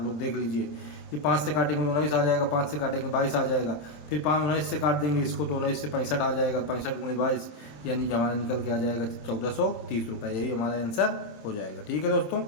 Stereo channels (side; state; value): right; late; 27 ms